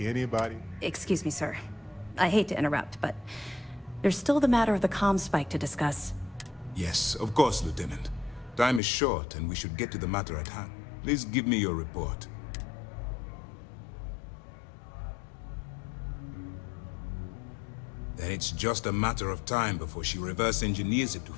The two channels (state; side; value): drops out; right; at 8.8 s